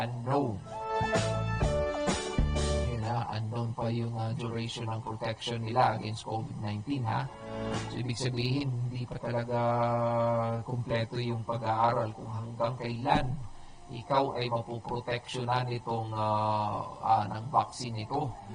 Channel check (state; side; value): identical; both; correlation 1.00